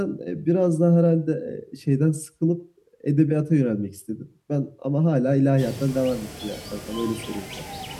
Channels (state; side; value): identical; both; correlation 1.00